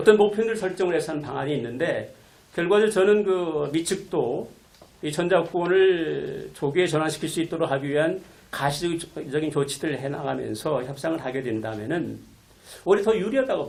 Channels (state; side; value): identical; both; correlation 1.00